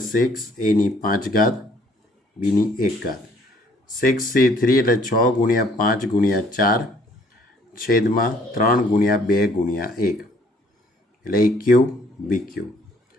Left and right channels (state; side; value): normal; both; correlation 0.61